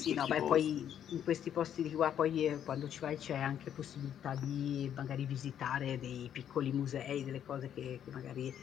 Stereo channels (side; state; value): right; quieter; 9.7 dB